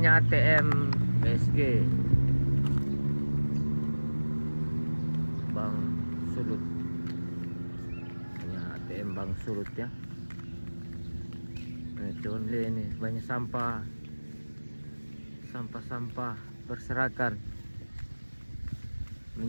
ATM BSG, Bank Sulut. Banyak ATM Bank Sulut ya. Nah, cuman lihat ini banyak sampah berserakan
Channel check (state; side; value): inverted; both; correlation -1.00